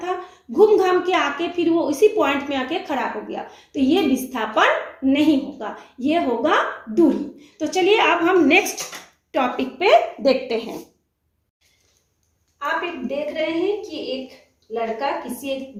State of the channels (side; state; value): both; identical; correlation 1.00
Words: घूम घाम के आके फिर वो इसी पॉइंट में आके खड़ा हो गया, तो ये विस्थापन नहीं होगा, ये होगा दूरी। तो चलिए अब हम नेक्स्ट टॉपिक पे देखते हैं। आप एक देख रहे हैं कि एक लड़का किसी एक